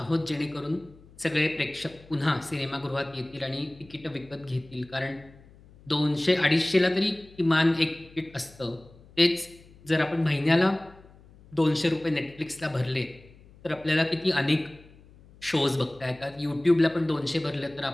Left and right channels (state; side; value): noise; left; hum, 24 dB below the sound